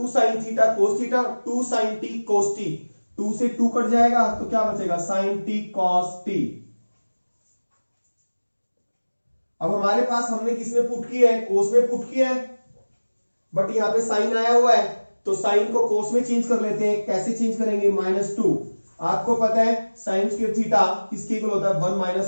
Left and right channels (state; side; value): inverted; both; correlation -1.00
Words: sin theta cos theta, 2 sin t cos t, 2 से 2 कट जाएगा तो क्या बचेगा sin t cos t। अब हमारे पास हमने किसमें पुट किया है, cos में पुट किया है, बट यहाँ पे sin आया हुआ है, तो sin को cos में चेंज कर लेते हैं, कैसे चेंज करेंगे, -2, आपको पता है sin स्क्वायर थीटा किसके इक्वल होता है 1